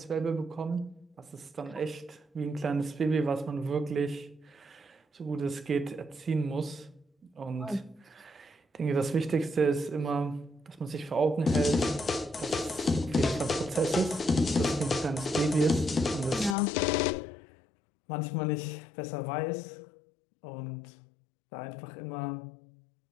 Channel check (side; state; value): right; drops out; at 16.6 s